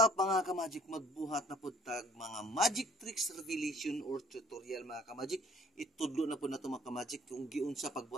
mga ka-magic, magbuhat na po tag mga magic tricks revelation or tutorial mga ka-magic. Itudlo na po na ito mga ka-magic kung giunsa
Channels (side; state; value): both; normal; correlation 0.56